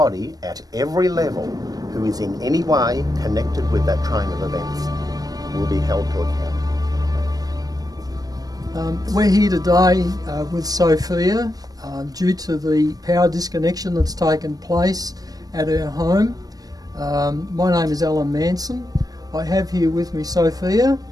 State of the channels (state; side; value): late; left; 0.18 ms